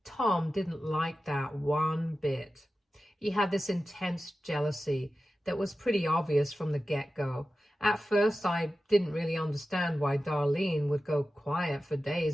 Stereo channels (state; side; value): normal; both; correlation 0.93